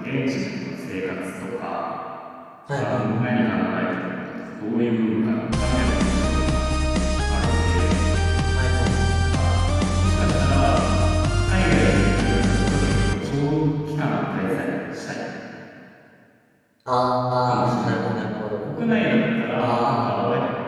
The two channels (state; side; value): identical; both; correlation 1.00